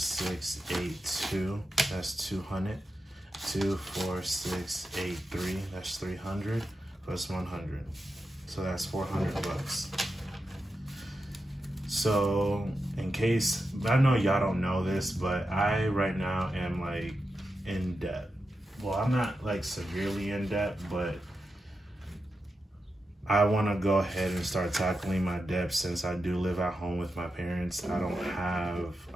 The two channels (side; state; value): both; normal; correlation 0.88